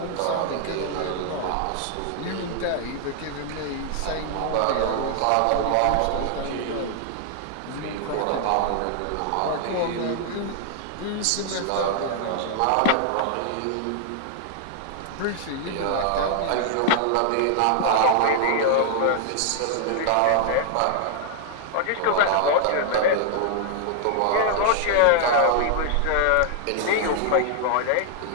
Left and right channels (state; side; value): different; both; correlation 0.00